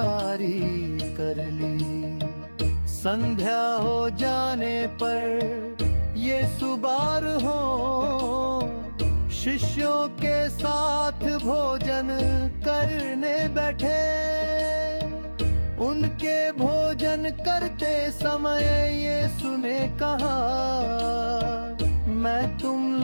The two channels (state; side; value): inverted; both; correlation -1.00